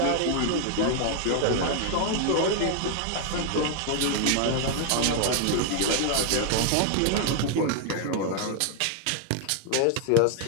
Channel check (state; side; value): different; both; correlation 0.00